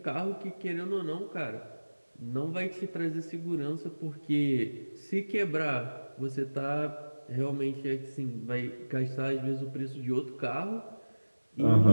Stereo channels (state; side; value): inverted; both; correlation -1.00